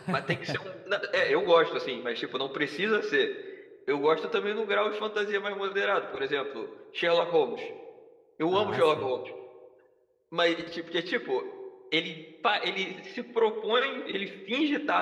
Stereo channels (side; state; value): both; identical; correlation 1.00